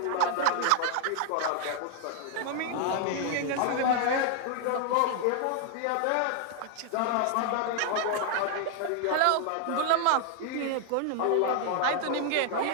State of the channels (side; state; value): both; different; correlation 0.00